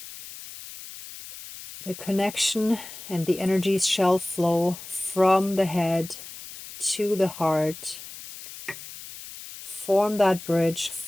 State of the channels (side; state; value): left; noise; hiss, 14 dB below the sound